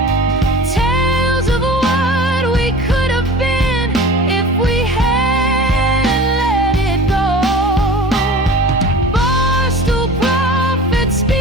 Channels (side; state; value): both; normal; correlation 0.39